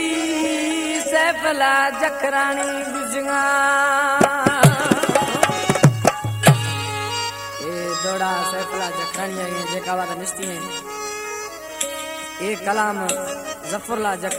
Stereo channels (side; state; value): both; identical; correlation 1.00